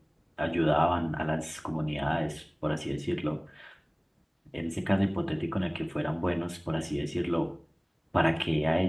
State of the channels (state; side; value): identical; both; correlation 1.00